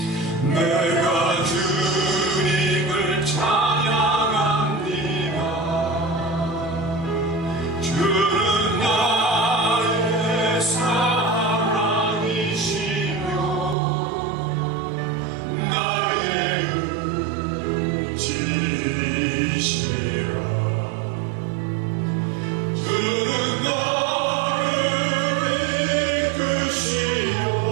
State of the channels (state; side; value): drops out; left; at 13.8 s